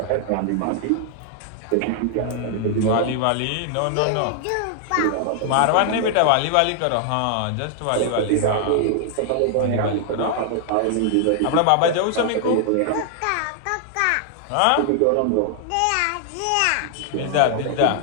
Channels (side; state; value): both; different; correlation 0.00